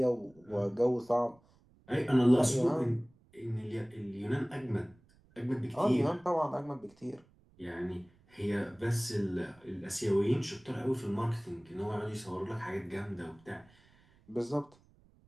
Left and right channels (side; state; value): right; noise; rumble, 30 dB below the sound